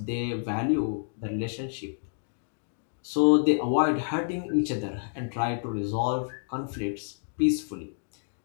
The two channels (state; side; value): silent; right; digital silence